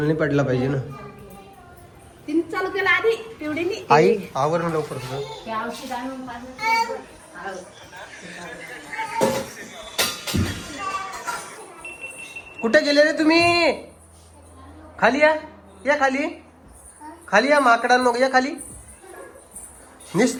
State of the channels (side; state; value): both; identical; correlation 1.00